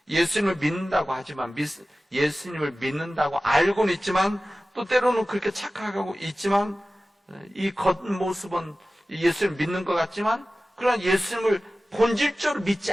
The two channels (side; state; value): both; normal; correlation 0.96